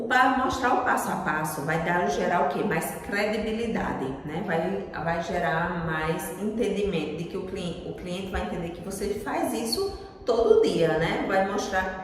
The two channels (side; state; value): both; identical; correlation 1.00